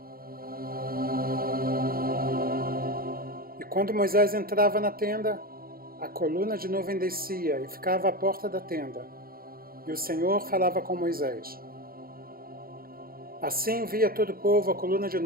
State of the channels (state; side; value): late; left; 0.43 ms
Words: E quando Moisés entrava na tenda, a coluna de nuvem descia e ficava à porta da tenda, e o Senhor falava com Moisés. Assim via todo o povo a coluna de